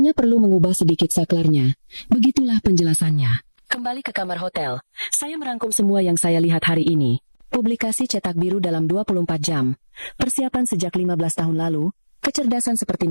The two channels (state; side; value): inverted; both; correlation -1.00